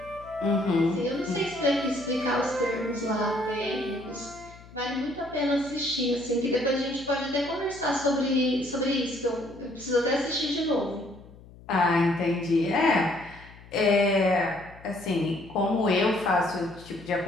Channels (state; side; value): noise; left; hum, 21 dB below the sound